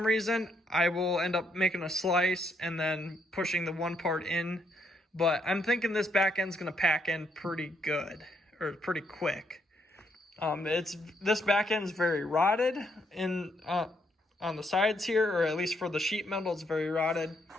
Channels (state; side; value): normal; both; correlation 0.74